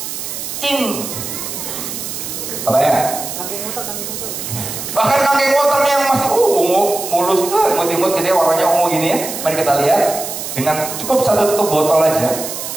Apa ya? Bahkan kangkeng waternya yang masih ungu, mulus, imut-imut gitu ya, warnanya ungu gini ya. Mari kita lihat. Dengan cukup 1 tutup botol aja,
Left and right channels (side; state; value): right; noise; hiss, 7 dB below the sound